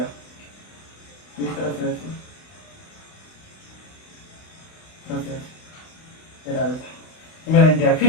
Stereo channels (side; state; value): right; late; 31 ms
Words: इस तरह से ऐसे, तरह से ऐसे, ये रहा देखो, ये मेरा इंडिया। फिर